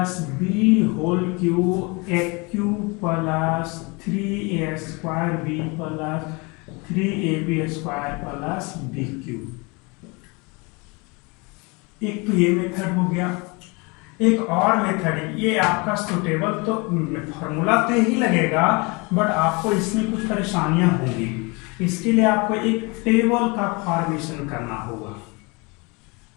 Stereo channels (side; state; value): right; quieter; 28.4 dB